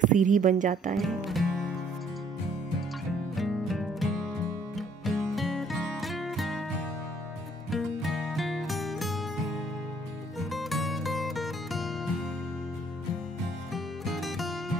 सीढ़ी बन जाता है।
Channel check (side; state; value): both; normal; correlation 0.63